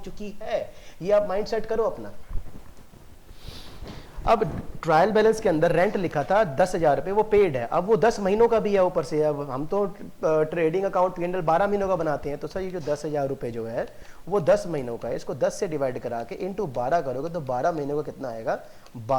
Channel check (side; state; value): both; identical; correlation 1.00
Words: चुकी है। ये आप माइंड सेट करो अपना। अब ट्रायल बैलेंस के अंदर रेंट लिखा था 10,000 रुपये, वो पेड है, अब वो 10 महीनों का भी है ऊपर से। अब हम तो ट्रेडिंग अकाउंट P&L 12 महीनों का बनाते हैं, तो सर ये जो 10,000 रुपये जो है वो 10 महीनों का है, इसको 10 से डिवाइड करा के इंटू 12 करोगे तो 12 महीनों का कितना आएगा,